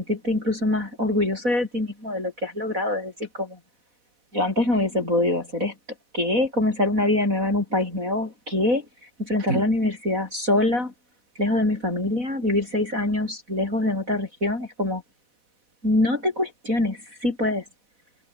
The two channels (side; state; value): left; late; 4.1 ms